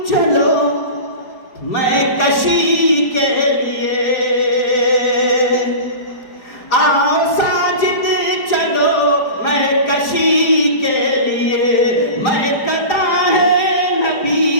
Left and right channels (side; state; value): right; late; 4.8 ms